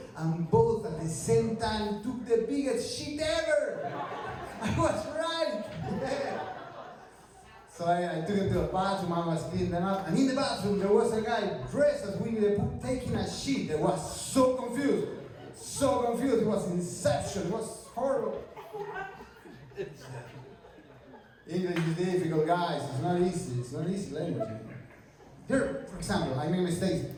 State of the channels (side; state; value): both; identical; correlation 1.00